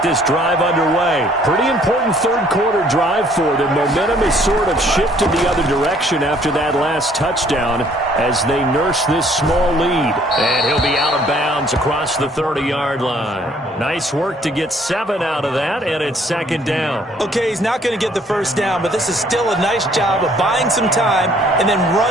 this drive underway. Pretty important third quarter drive for them. Momentum has sort of shifted the other direction after that last touchdown as they nurse this small lead. And he'll be out of bounds across the 30-yard line. Nice work to get 7 out of that, and it's second down. Okay, he's not going to get the first down, but this is still a nice job of buying some time and then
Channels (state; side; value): normal; both; correlation 0.61